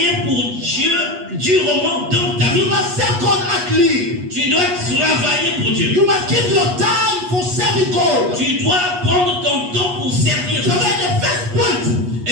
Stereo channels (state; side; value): late; left; 8.3 ms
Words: pour Dieu durement dans ta You vie. must serve God actively. Tu dois travailler pour Dieu. You must give your time for serving God. Tu dois prendre ton temps pour servir So Dieu. that's the first point.